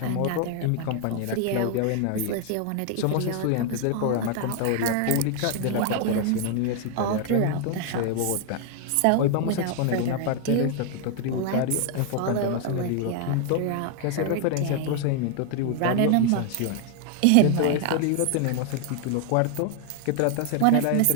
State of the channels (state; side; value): different; both; correlation 0.00